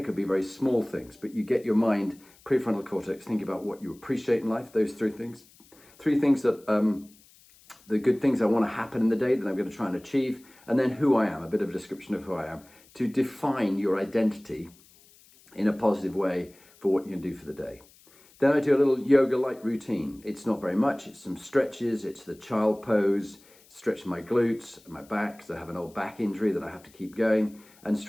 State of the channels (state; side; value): noise; left; hiss, 27 dB below the sound